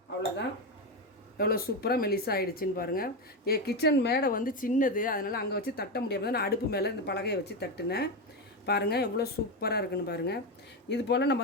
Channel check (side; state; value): both; normal; correlation 0.12